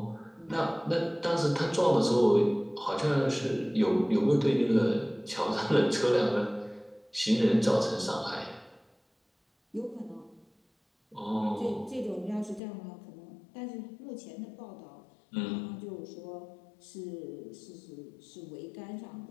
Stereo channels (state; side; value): drops out; right; at 12.6 s